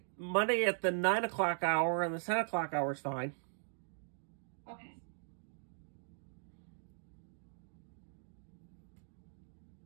Monday at the 9 o'clock hour and the 10 o'clock hour is fine. Okay.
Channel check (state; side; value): silent; left; digital silence